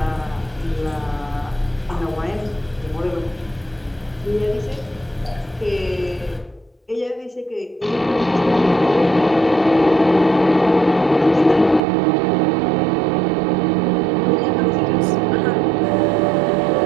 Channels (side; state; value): left; drops out; at 11.8 s